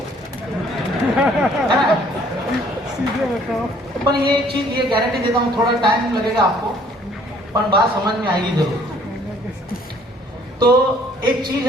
है ना। सीधे बताओ। पर ये चीज ये गारंटी देता हूँ थोड़ा टाइम लगेगा आपको, पर बात समझ में आएगी जरूर। तो एक चीज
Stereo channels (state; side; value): normal; both; correlation 0.59